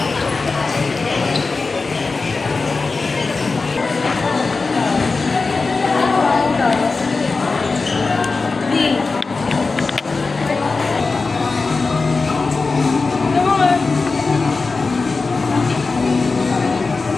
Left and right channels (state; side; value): quieter; right; 4.1 dB